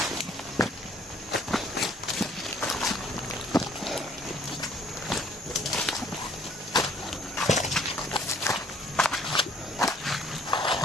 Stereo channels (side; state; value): both; normal; correlation 0.60